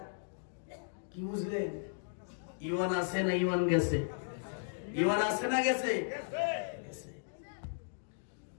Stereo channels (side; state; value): right; silent; digital silence